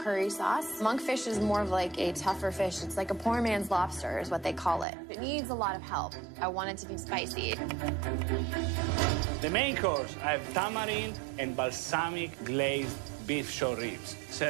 sauce. Monkfish is more of like a tougher fish. It's like a poor man's lobster is what they call it. It needs a lot of help. I want it to be spicy. The main course, I have tamarind and balsamic glazed beef short ribs,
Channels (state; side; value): drops out; left; at 4.9 s